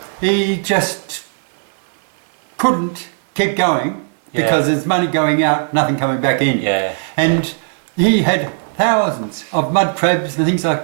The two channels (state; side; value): silent; left; digital silence